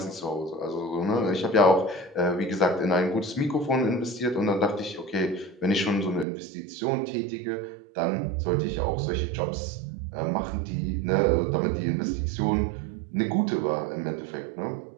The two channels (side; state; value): left; drops out; at 6.2 s